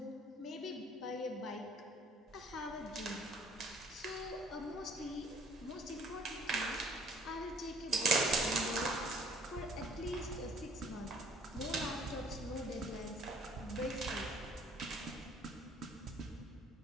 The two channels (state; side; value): normal; both; correlation 0.57